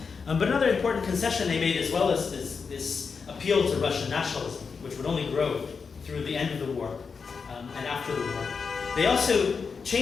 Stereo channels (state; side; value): quieter; right; 5.4 dB